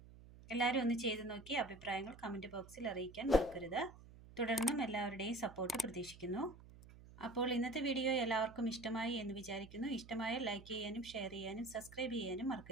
എല്ലാവരും ഒന്ന് ചെയ്ത് നോക്കി അഭിപ്രായങ്ങൾ കമൻറ്റ് ബോക്സിൽ അറിയിക്കാൻ മറക്കരുത്. തുടർന്നും എല്ലാവരുടെയും സപ്പോർട്ട് പ്രതീക്ഷിക്കുന്നു. അപ്പോൾ ഇന്നത്തെ വീഡിയോ എല്ലാവർക്കും ഇഷ്ടമായി എന്ന് വിചാരിക്കുന്നു. ഇഷ്ടമായ ലൈക്ക് ചെയ്യാനും ഷെയർ ചെയ്യാനും സബ്സ്ക്രൈബ് ചെയ്യാനും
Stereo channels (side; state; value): right; noise; hum, 19 dB below the sound